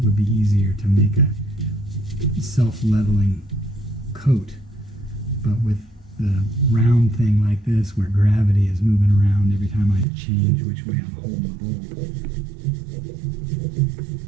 would be easier to make a self-leveling coat, but with the round thing like this where gravity is moving around every time I change which way I'm holding the bowl,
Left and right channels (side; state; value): left; drops out; at 10.1 s